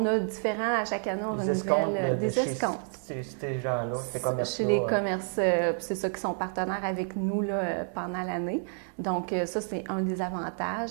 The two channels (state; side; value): silent; left; 58 dB below the other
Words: a différents, à chaque année, on des escomptes. Des escomptes. Ces gens-là, ces commerces-là. Chez les commerces, c'est ça qui sont partenaires avec nous là, pendant l'année. Donc, ça, c'est un des avantages.